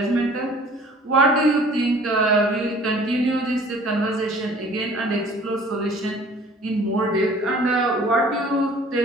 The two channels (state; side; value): normal; both; correlation 0.51